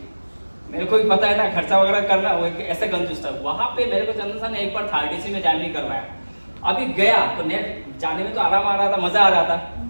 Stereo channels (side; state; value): both; inverted; correlation -1.00